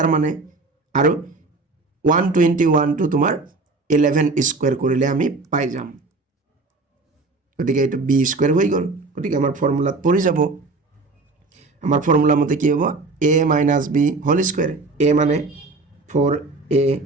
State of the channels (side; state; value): left; quieter; 3.6 dB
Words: মানে আৰু 121 টু তোমাৰ 11 স্কয়াৰ কৰিলে আমি পাই যাম গতিকে এটা b স্কয়াৰ হৈ গল গতিকে আমাৰ ফৰ্মুলাত পৰি যাব আমাৰ ফৰ্মুলা মতে কি হ'ব a - b whole square a মানে 4a